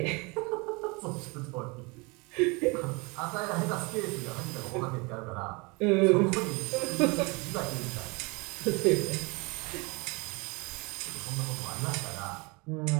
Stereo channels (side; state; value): left; quieter; 28.0 dB